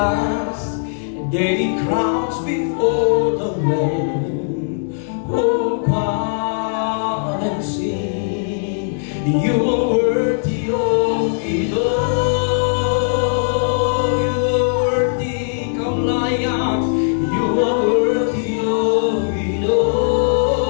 their crowns before the Lamb. Oh God, and sing, you are worthy of it all. You are worthy, come layak. You are worthy of it all.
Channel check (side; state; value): right; silent; digital silence